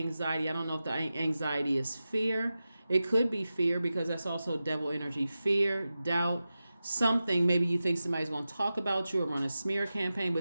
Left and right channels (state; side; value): inverted; both; correlation -0.93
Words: I don't know if the anxiety is fear. It could be fear, because that's also devil energy. Fear, doubt, something. Maybe you think somebody's going to talk about you or run a smear campaign,